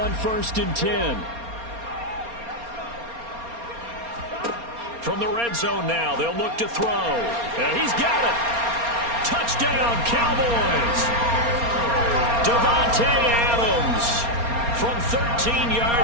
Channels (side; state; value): left; late; 4.3 ms